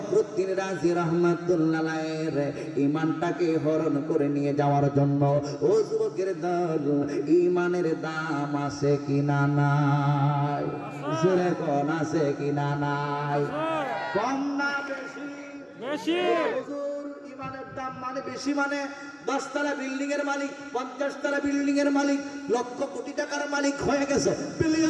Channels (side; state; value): both; identical; correlation 1.00